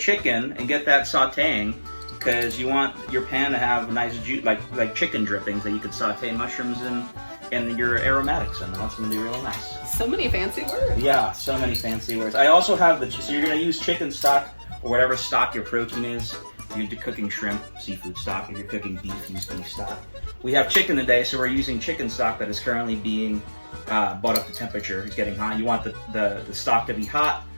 and get that sautéing, because you want your pan to have nice juice, like chicken drippings that you could sauté mushrooms and your aromatics in. That's gonna be really nice. So many fancy words. Yeah, so many fancy words. I also have so you're gonna use chicken stock or whatever stock your protein is. If you're cooking shrimp, seafood stock. If you're cooking beef, use beef stock. We have chicken today, so we're using chicken stock that is currently being brought up to temperature. It's getting hot. You want the stock to be hot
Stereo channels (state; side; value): inverted; both; correlation -1.00